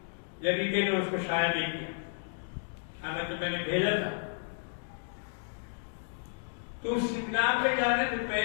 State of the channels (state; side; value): silent; right; digital silence